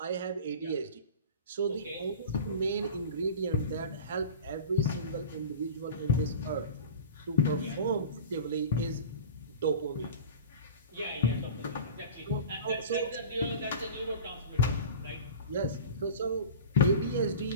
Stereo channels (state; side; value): inverted; both; correlation -0.35